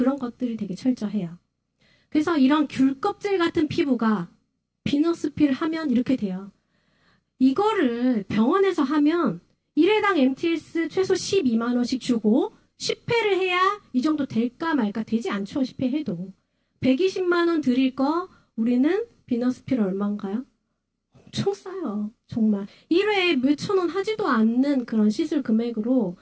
것들이 되게 철저해요. 그래서 이런 귤 껍질 같은 피부가 비너스 필 하면 이렇게 돼요. 이거를 병원에서 하면 1회당 MTS 최소 12만 원씩 주고 10회를 해야 이 정도 될까 말까. 되지 않죠. 10회 해도. 120만 원 드릴 거 우리는 비너스 필 얼마인가요? 엄청 싸요. 정말. 1회에 몇천 원 하지도 않는 그런 시술 금액으로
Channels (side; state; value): both; identical; correlation 1.00